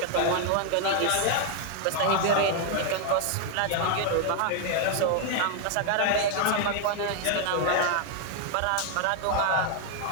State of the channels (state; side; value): different; both; correlation 0.00